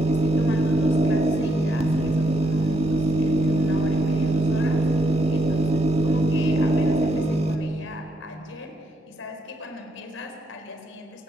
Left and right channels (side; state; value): both; normal; correlation 0.77